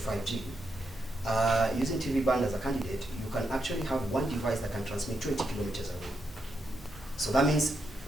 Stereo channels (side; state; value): both; normal; correlation 0.82